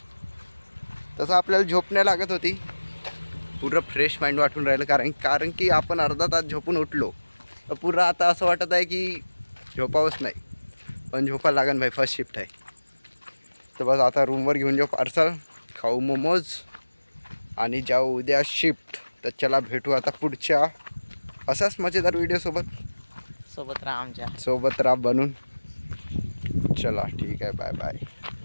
तसं आपल्याला झोप नाही लागत होती, पुरं फ्रेश माइंड वाटून राहिलं, कारण की आपण अर्धा तास झोपून उठलो तर पुरं आता असं वाटत आहे की झोपावंच नाही, पण झोपा लागन भाई, फर्स्ट शिफ्ट आहे. तर बस आता रूमवर घेऊन जाऊ पार्सल, खाऊ मोमोज आणि जाऊ उद्या शिफ्ट. तर चला भेटू आता पुढच्या असाच मजेदार व्हिडिओसोबत. सोबत राहा आमच्या. सोबत राहा बनून. चला ठीक आहे, बाय बाय.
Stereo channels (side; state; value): both; inverted; correlation -1.00